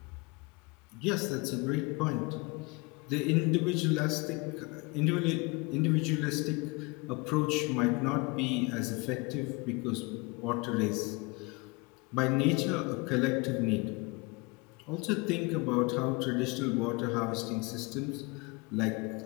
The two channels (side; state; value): right; quieter; 27.3 dB